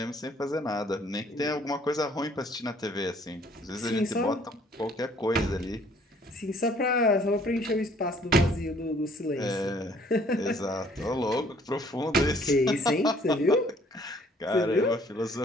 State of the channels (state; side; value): normal; both; correlation 0.59